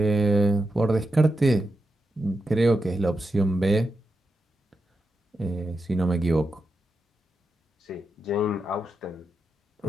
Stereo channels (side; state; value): both; normal; correlation 0.87